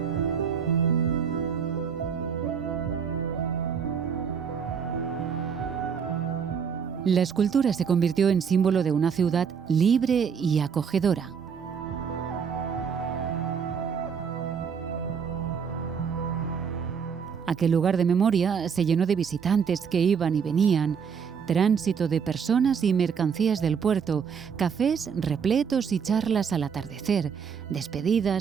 La escultura se convirtió en símbolo de una ciudad libre y acogedora. Aquel lugar de memoria se llenó de visitantes que iban y venían, tránsito de personas y mercancías del puerto, cafés repletos y charlas al atardecer,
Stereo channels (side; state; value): left; quieter; 6.7 dB